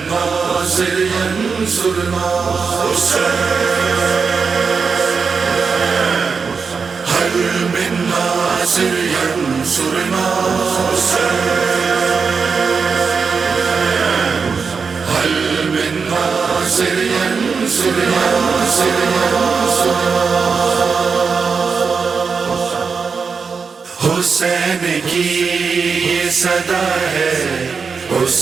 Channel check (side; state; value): left; quieter; 5.4 dB